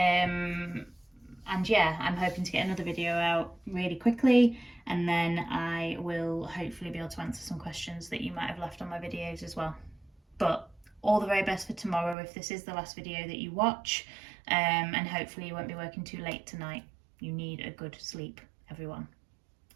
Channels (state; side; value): drops out; left; at 12.2 s